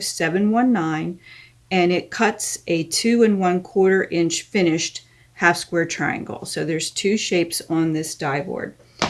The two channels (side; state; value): both; identical; correlation 1.00